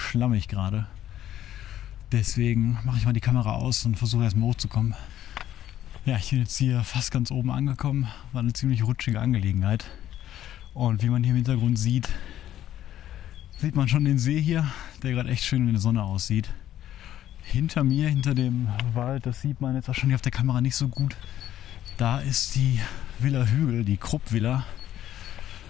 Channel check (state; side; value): quieter; right; 12.0 dB